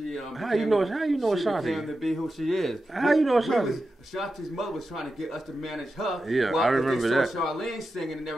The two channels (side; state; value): both; normal; correlation 0.91